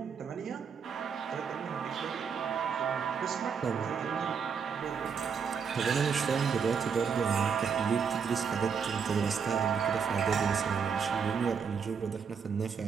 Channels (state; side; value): quieter; left; 6.4 dB